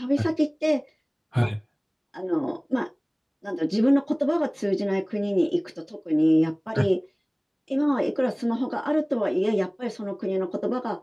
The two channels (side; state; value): both; identical; correlation 1.00